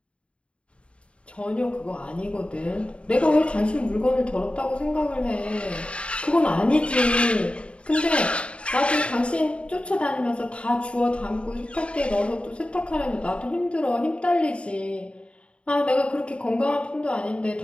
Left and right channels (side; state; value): right; late; 0.059 ms